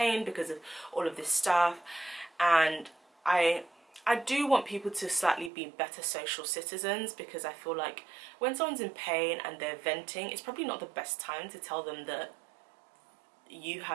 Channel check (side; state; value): left; drops out; at 5.5 s